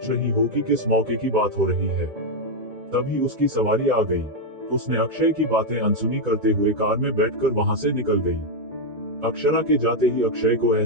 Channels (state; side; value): late; left; 2.2 ms